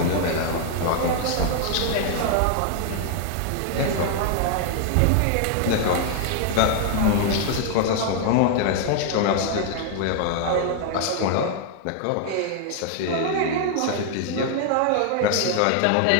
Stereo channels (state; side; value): different; both; correlation 0.00